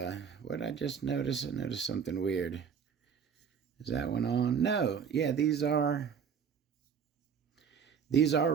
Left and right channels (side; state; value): left; quieter; 6.9 dB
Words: what did I just notice? I noticed something weird. Is that one on? No. Yeah, these are